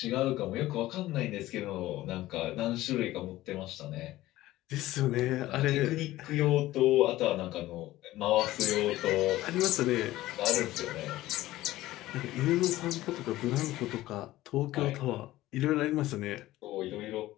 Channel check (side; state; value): right; quieter; 16.2 dB